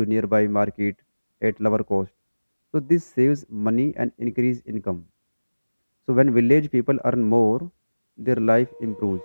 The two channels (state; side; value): inverted; both; correlation -1.00